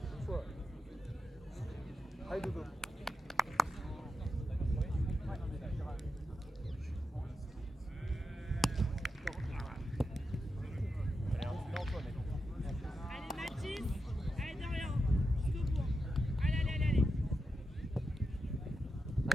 Une fois. Allez, dodo. Allez Mathis! Allez Dorian! Jusqu'au bout! Allez!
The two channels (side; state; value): both; normal; correlation 0.88